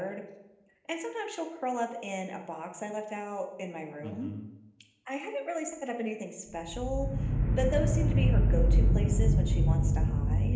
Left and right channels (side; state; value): both; identical; correlation 1.00